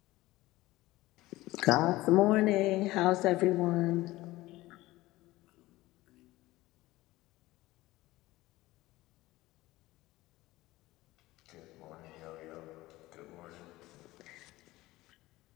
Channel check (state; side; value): quieter; right; 18.3 dB